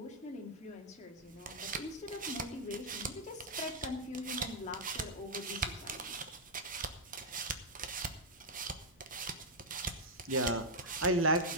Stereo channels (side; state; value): both; normal; correlation -0.04